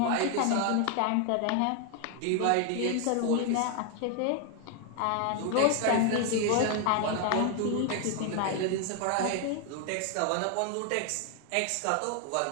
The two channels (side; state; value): both; different; correlation 0.00